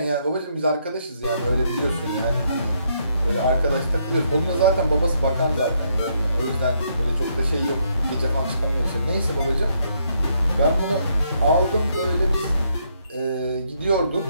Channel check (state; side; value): inverted; both; correlation -0.74